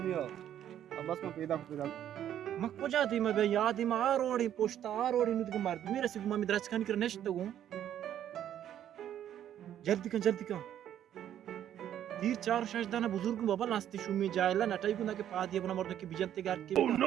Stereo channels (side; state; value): left; quieter; 10.7 dB